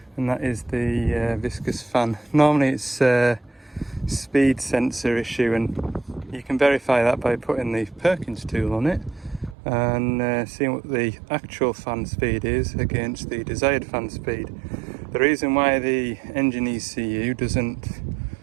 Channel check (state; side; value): drops out; left; at 9.6 s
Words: and that is the viscous fan. Normally it's a speed sensor issue, and you can verify that by putting the Perkins tool on it and seeing what the actual fan speed is against the desired fan speed. The reason why the engine ECU doesn't